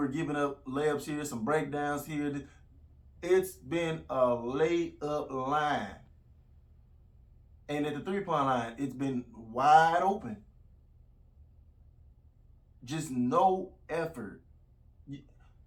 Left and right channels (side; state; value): both; identical; correlation 1.00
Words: giving up layups here, some breakdowns here. It's been a laid up line. And at the 3-point line, it's been wide open. Just no effort.